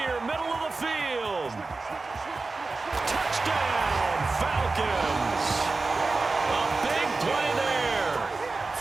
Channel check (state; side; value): quieter; left; 3.7 dB